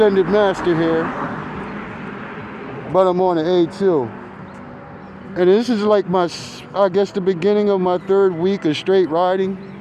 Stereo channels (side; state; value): both; identical; correlation 1.00